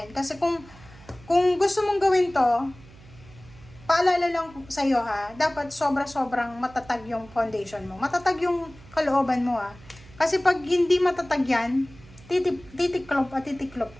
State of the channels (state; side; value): noise; right; hum, 22 dB below the sound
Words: Kasi kung gusto mong gawin to, paalala lang sa'yo ha, dapat sobra-sobrang matatag yung foundation mo. Matatag yung kalooban mo ha. Kasi pag hindi matatag yan, titiklop